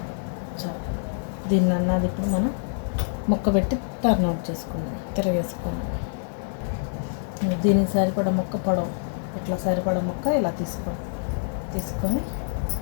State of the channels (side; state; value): right; silent; 61 dB below the other